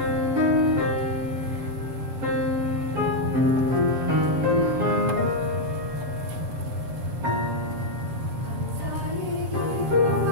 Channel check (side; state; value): left; late; 6.8 ms